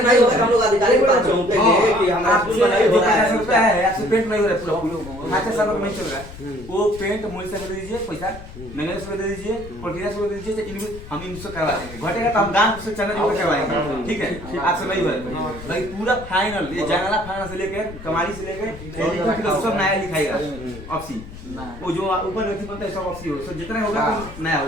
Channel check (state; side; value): noise; left; rumble, 14 dB below the sound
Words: नहीं होगा हम लोग अधिकारी के पास जाऊंगे कि हमारा स्कूल में नहीं हो रहा है रुपया है आपसे पेंट नहीं हो रहा है पूरा खाते सालों में नहीं चल रहा है वो पेंट मूल से दे दीजिए पैसा मैंने से दे दीजिए प्रक्रिया से दे दीजिए इनको हम इनसे करवा देंगे घटेगा तो हम गांव से चंदा जोड़ करवाएंगे ठीक है आपसे नहीं हो रहा है भाई पूरा फाइनल ये जंगला फाइनल से लेके कमारी से लेके सब नया लिखाएगा ऑफसी वो जो ऊपर नहीं बनता है सब ऑफसी हो तो जितना होगा तो नया